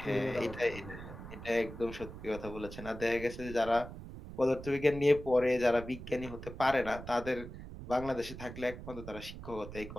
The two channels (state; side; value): noise; right; rumble, 12 dB below the sound